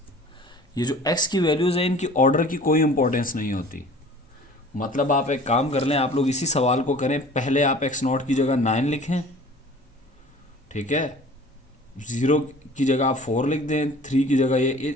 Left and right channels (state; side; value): normal; both; correlation 0.46